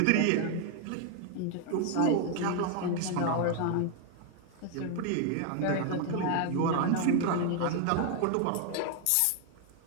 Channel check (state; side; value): different; both; correlation 0.00